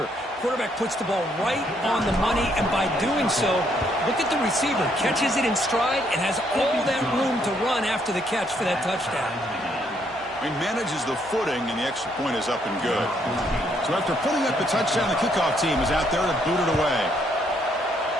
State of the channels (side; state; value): both; normal; correlation 0.71